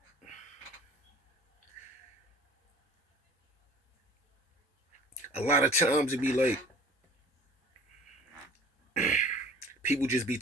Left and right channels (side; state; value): both; normal; correlation 0.46